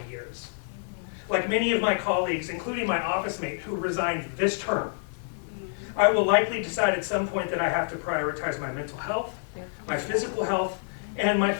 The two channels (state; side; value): silent; right; digital silence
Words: years. Like many of my colleagues, including my office mate who resigned this term, I will likely decide at some point that I have to prioritize my mental health, my physical health, and my